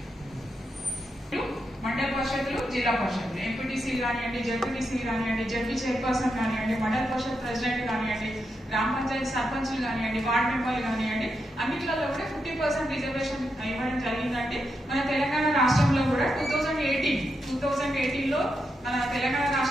మండల పరిషత్తులు, జిల్లా పరిషత్తులు, ఎంపీటీసీలు కానివ్వండి, జడ్పీటీసీలు కానివ్వండి, జడ్పీ చైర్పర్సన్ కానివ్వండి, మండల పరిషత్ ప్రెసిడెంట్ కానివ్వండి, గ్రామ పంచాయతీ సర్పంచ్లు కానివ్వండి, వార్డు మెంబర్లు కానివ్వండి, అన్నిట్లలో కూడా 50% రిజర్వేషన్ ఇవ్వడం జరిగిందంటే మన తెలంగాణ రాష్ట్రంలో కూడా 2018లో మన తెలంగాణ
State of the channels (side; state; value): both; normal; correlation 0.84